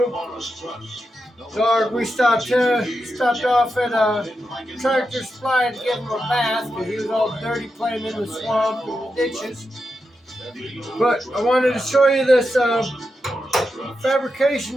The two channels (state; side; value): normal; both; correlation 0.88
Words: Dog, we stopped off at a Tractor Supply to give him a bath because he was all dirty playing in the swamp and the ditches. But I wanted to show you this fabrication